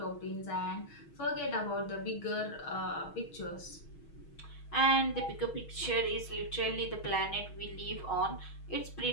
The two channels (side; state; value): right; late; 6.3 ms